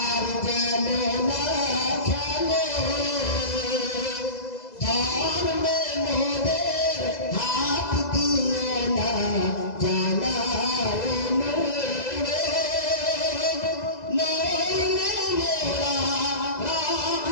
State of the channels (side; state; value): right; late; 2.0 ms